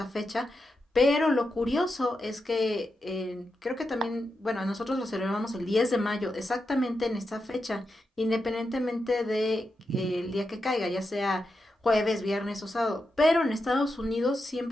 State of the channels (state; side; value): normal; both; correlation 0.87